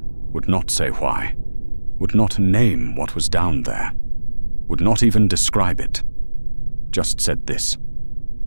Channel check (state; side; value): inverted; both; correlation -1.00